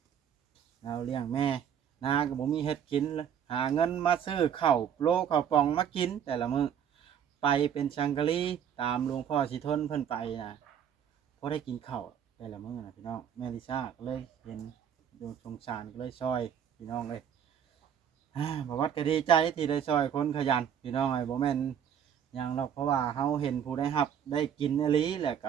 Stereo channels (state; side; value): quieter; left; 8.7 dB